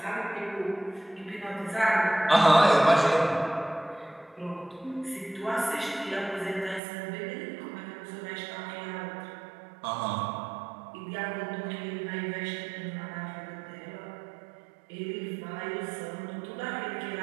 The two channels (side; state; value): left; drops out; at 6.8 s